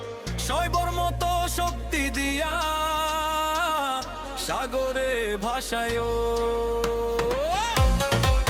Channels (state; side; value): identical; both; correlation 1.00